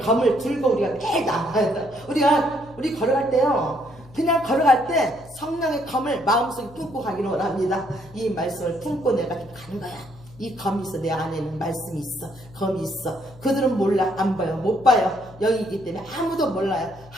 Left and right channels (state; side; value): noise; left; hum, 22 dB below the sound